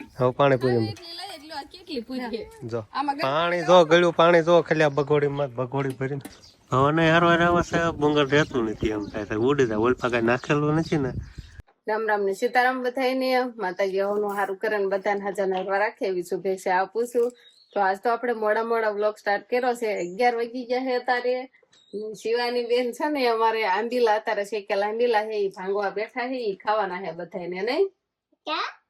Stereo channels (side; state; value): both; identical; correlation 1.00